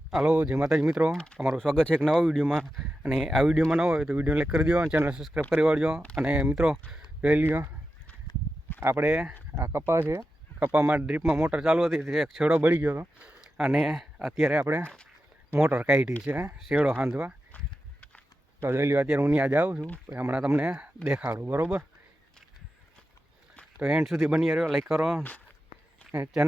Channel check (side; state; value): both; normal; correlation 0.90